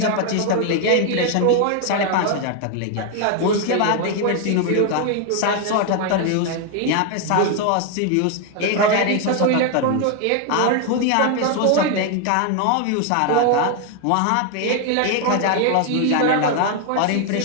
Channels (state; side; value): different; both; correlation 0.01